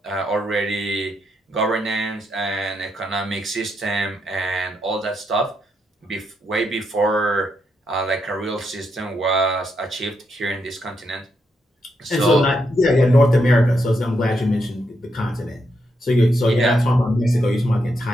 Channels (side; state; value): both; normal; correlation 0.80